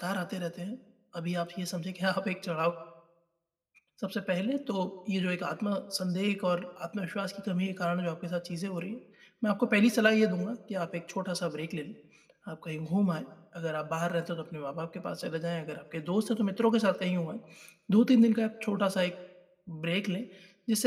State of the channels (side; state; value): both; identical; correlation 1.00